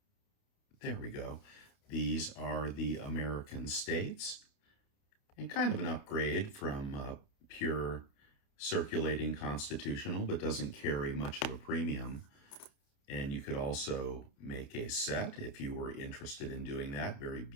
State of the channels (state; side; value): late; right; 29 ms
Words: there we go. These are the American states, and kind of an upgrade from pure circulating constitutional, but doesn't carry much of a premium. And you could also make a set if you were interested in doing that. Very